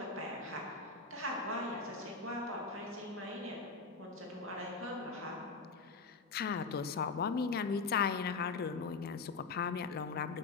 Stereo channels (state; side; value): quieter; right; 4.4 dB